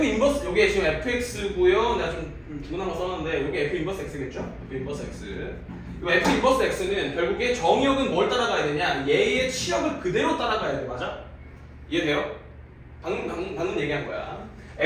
인버스 요게 지금 fx고요. 내가 좀 주문한 거 썼는데 요게 f 인버스 x겠죠? f 인버스 x. 이 f 인버스 x는 결국에 정의역은 뭘 따라가야 되냐? 얘의 치역을 그대로 따라가야 돼. 맞아? 이해돼요? 방금 얘기한 거야.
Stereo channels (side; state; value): both; identical; correlation 1.00